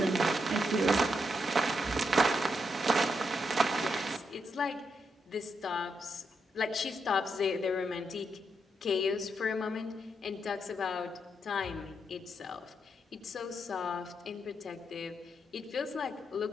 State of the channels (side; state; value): both; normal; correlation 0.81